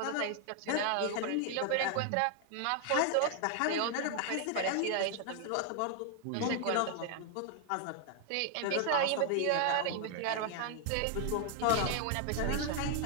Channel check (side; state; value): both; different; correlation 0.00